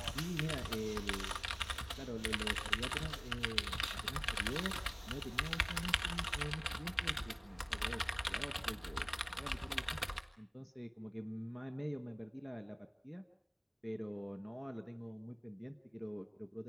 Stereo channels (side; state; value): both; identical; correlation 1.00